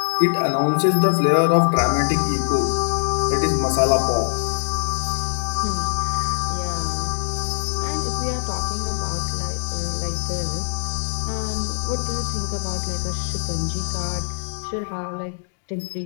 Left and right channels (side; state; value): right; silent; digital silence